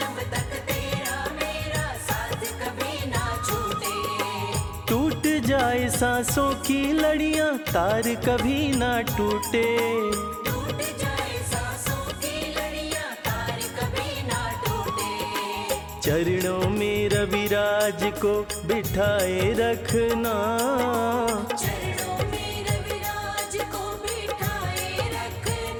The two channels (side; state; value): both; identical; correlation 1.00